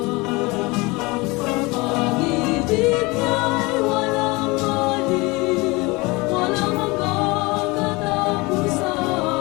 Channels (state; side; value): quieter; right; 24.5 dB